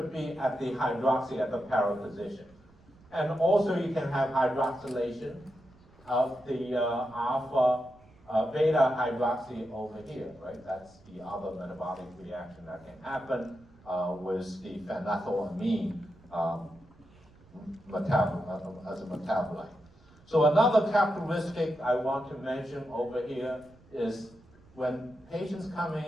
be at the hydroxy at the para position. And also you can have hydroxylation of the alpha beta hydroxy over here, right? That's the other metabolic reaction that can happen with the phenethylamine as a metabolite. So another characteristic I want to mention over here is when patients coming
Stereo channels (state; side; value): noise; right; rumble, 27 dB below the sound